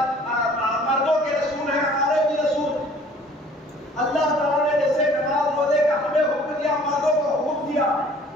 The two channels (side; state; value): both; normal; correlation 0.53